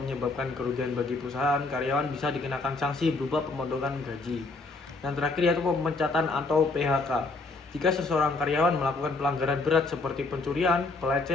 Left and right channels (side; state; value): right; quieter; 3.4 dB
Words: kerugian bagi perusahaan, karyawan bisa dikenakan sanksi berupa pemotongan gaji. Yang terakhir yaitu pemecatan atau PHK. Jika seseorang karyawan melakukan pelanggaran berat seperti pencurian,